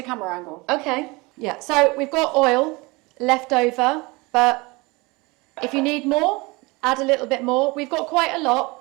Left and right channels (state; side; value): quieter; left; 24.7 dB